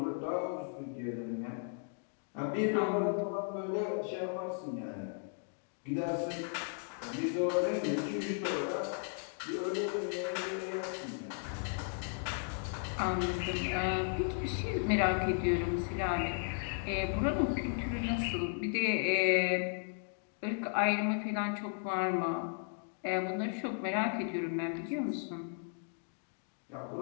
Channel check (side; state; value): right; silent; 54 dB below the other